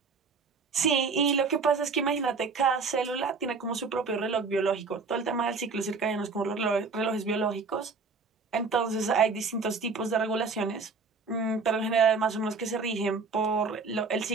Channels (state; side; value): quieter; left; 4.6 dB